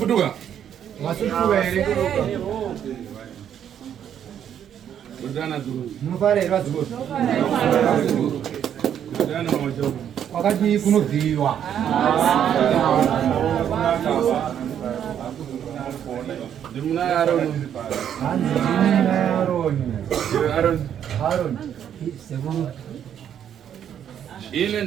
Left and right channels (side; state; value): left; quieter; 9.4 dB